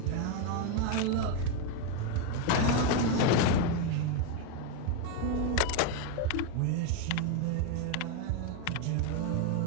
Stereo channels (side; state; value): both; different; correlation 0.01